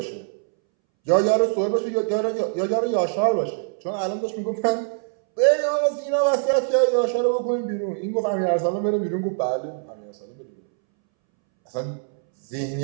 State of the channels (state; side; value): silent; left; 63 dB below the other